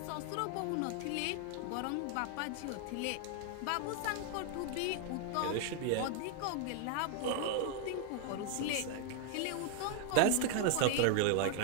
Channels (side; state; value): both; different; correlation 0.00